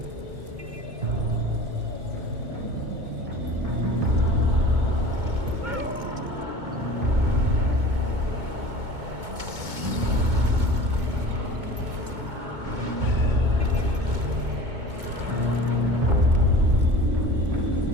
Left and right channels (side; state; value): left; late; 2.2 ms